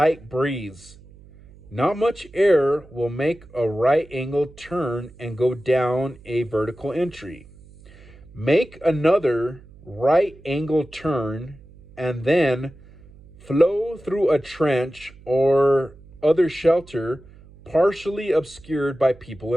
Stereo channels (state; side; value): noise; right; hum, 23 dB below the sound